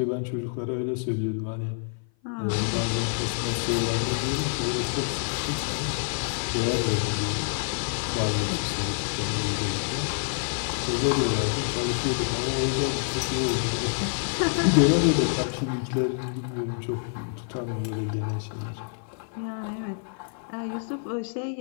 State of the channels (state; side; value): silent; right; 55 dB below the other